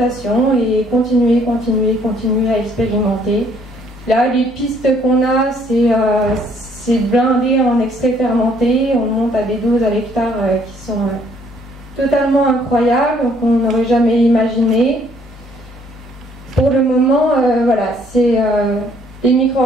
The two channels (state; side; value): normal; both; correlation 0.64